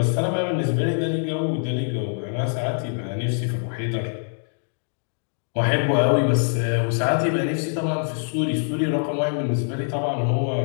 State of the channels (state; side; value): silent; right; digital silence